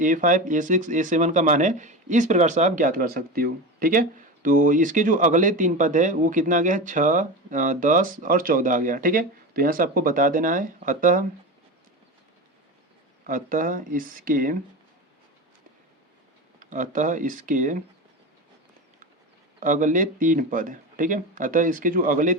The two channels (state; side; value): normal; both; correlation 0.24